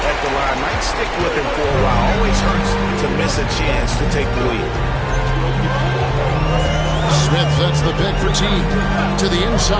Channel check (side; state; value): both; identical; correlation 1.00